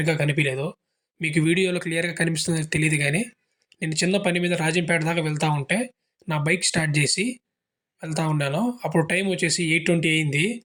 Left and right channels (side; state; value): both; identical; correlation 1.00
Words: కనిపియలేదు. మీకు వీడియోలో క్లియర్‌గా కనిపిస్తుందో తెలీదు గానీ, నేను చిన్న పని మీద రాజంపేట దాకా వెళ్తా ఉంటే, నా బైక్ స్టార్ట్ జేసి వెళ్తా ఉన్నాను. అప్పుడు టైం వచ్చేసి 8:20 అయింది.